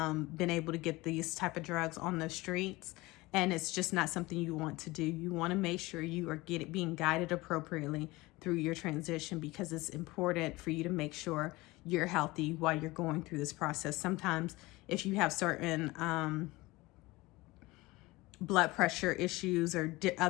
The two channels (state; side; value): quieter; right; 21.0 dB